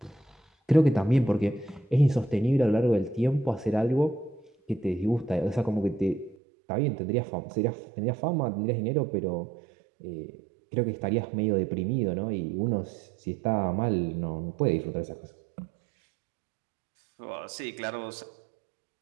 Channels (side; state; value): left; drops out; at 6.4 s